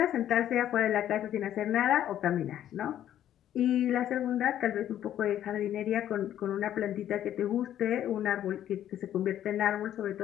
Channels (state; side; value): quieter; right; 11.3 dB